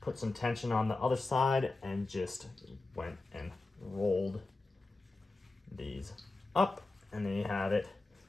some tension on the other side and just went and rolled these up. And then you have it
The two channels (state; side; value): quieter; right; 3.3 dB